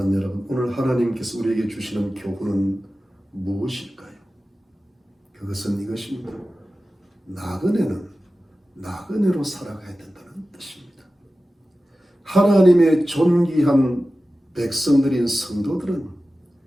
여러분, 오늘 하나님께서 우리에게 주시는 교훈은 무엇일까요? 그것은 이것입니다. 나그네는 나그네로 살아가야 된다는 뜻입니다. 하나님의 존귀한 백성들인 성도들은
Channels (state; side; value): normal; both; correlation 0.95